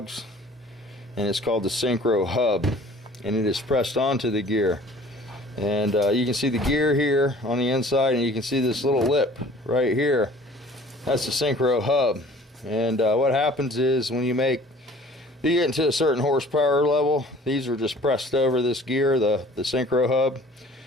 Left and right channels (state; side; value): normal; both; correlation 0.49